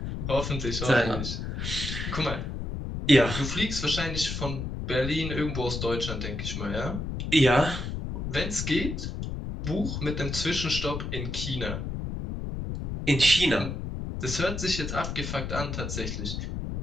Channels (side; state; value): left; noise; rumble, 4 dB below the sound